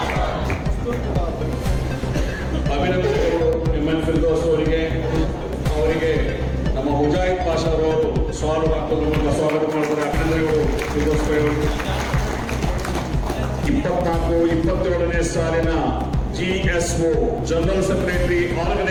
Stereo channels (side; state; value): both; identical; correlation 1.00